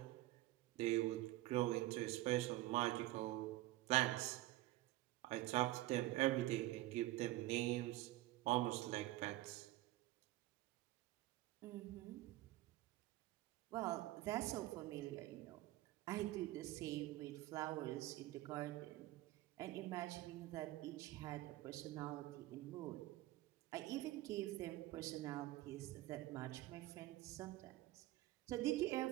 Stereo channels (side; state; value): left; quieter; 17.3 dB